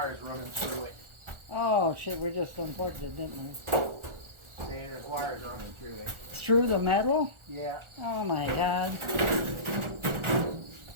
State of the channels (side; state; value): left; late; 1.4 ms